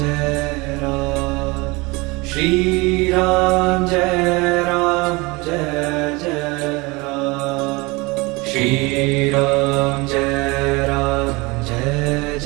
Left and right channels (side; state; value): left; quieter; 24.8 dB